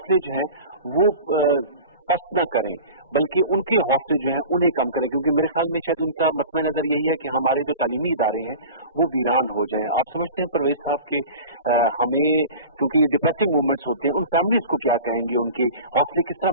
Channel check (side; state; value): both; inverted; correlation -0.37